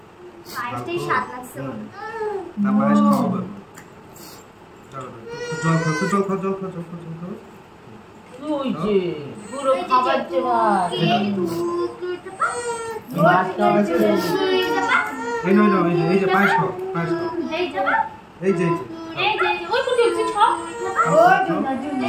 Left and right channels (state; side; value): identical; both; correlation 1.00